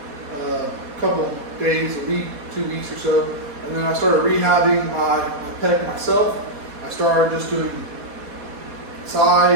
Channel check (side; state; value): left; late; 4.2 ms